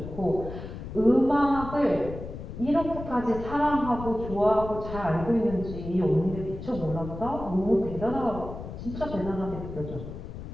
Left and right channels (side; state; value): left; noise; rumble, 10 dB below the sound